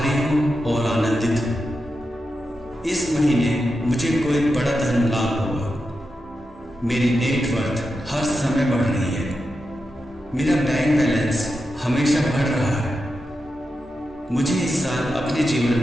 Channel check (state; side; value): normal; both; correlation 0.89